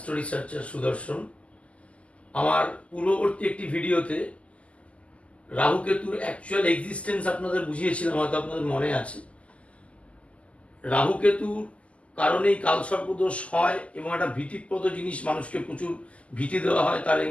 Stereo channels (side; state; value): right; late; 0.062 ms